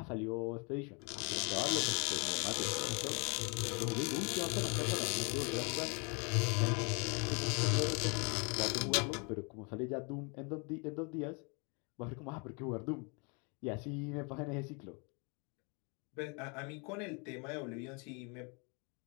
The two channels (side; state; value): right; quieter; 33.5 dB